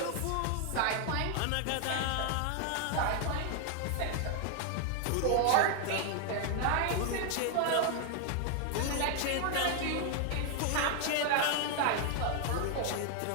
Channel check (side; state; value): both; different; correlation 0.00